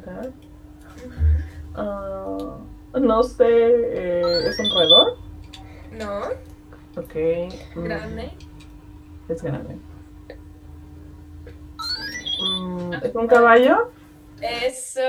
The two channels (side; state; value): both; identical; correlation 1.00